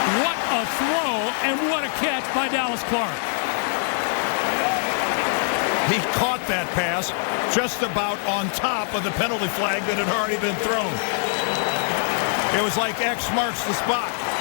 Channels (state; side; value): silent; right; 56 dB below the other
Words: What a throw, and what a catch by Dallas Clark. He caught that pass just about on top of the penalty flag that had already been thrown. It was like X marks the spot.